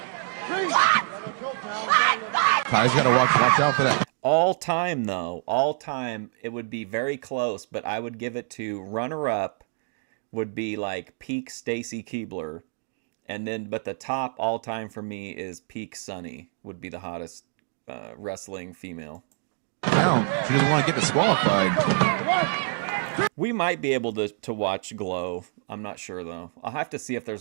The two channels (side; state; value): left; silent; digital silence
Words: Kai's got to watch out for that. All time, though, all time, it would be very close, but I would give it to runner-up would be like peak Stacy Keibler. And then, but the top all time for me is peak Sunny, would be the hottest wrestling female. Now, she doesn't want to get disqualified. We might be able to watch Glow. I'm not sure though. I'll have to see if there's